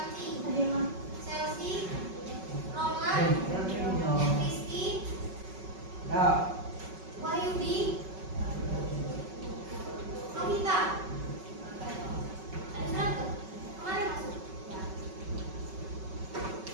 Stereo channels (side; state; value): left; late; 5.3 ms